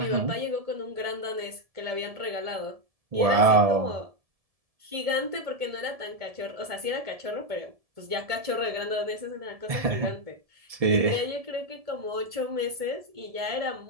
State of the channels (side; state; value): left; late; 1.7 ms